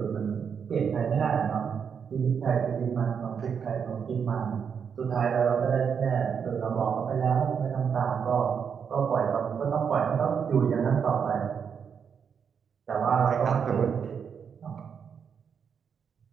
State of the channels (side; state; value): left; quieter; 6.9 dB